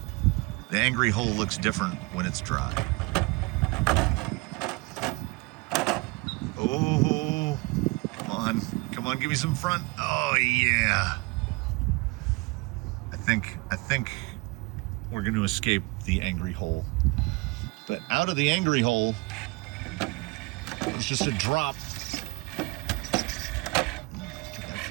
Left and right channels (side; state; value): left; quieter; 26.0 dB